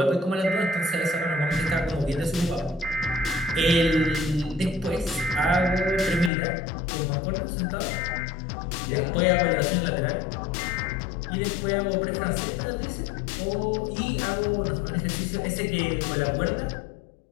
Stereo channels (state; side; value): drops out; right; at 6.3 s